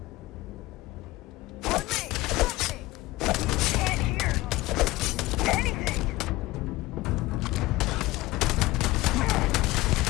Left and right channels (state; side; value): quieter; right; 19.1 dB